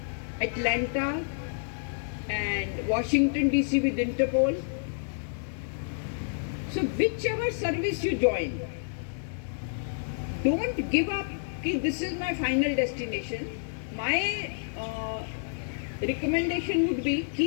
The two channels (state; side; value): silent; right; digital silence